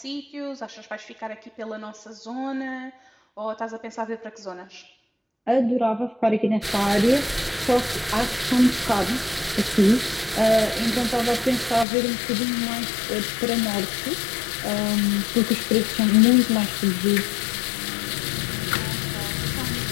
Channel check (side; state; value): right; drops out; at 11.9 s